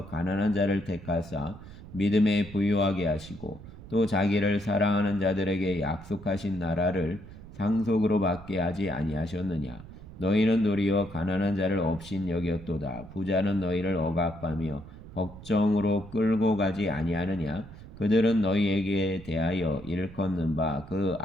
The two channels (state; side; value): noise; right; rumble, 16 dB below the sound